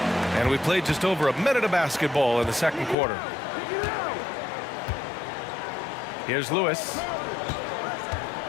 And we played just over a minute of basketball in the second quarter. Here's Lewis.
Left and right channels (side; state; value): right; drops out; at 3.0 s